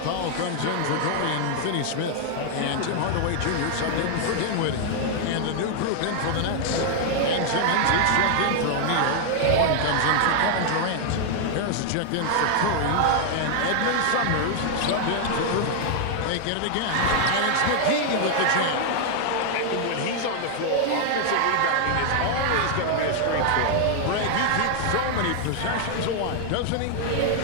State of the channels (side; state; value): both; different; correlation 0.00